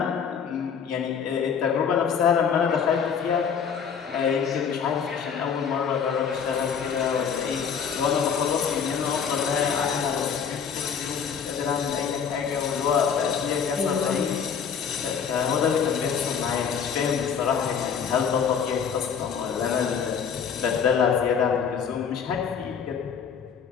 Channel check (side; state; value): right; quieter; 6.9 dB